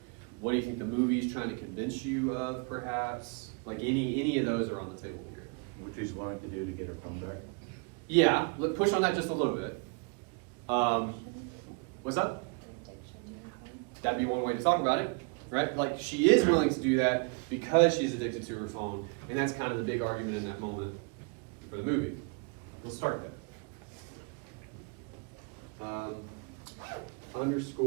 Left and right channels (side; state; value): left; quieter; 33.7 dB